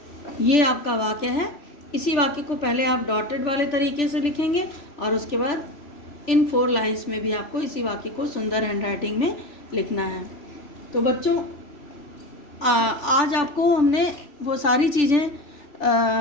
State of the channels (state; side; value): late; right; 3.4 ms